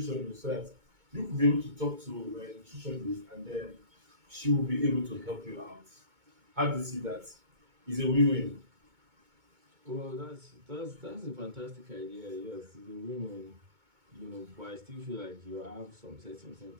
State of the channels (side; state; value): left; late; 2.2 ms